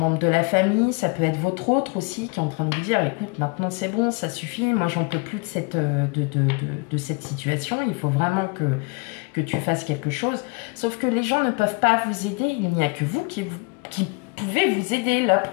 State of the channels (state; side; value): quieter; right; 29.1 dB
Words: de la famille, ça peut être votre autre aussi qui est en train de vous dire, écoute, maintenant c'est bon, ça suffit, moi j'en peux plus de cette situation, il faut vraiment que tu fasses quelque chose. Sauf que les gens ne peuvent pas vous aider, il n'y a que vous qui pouvez vous aider. Là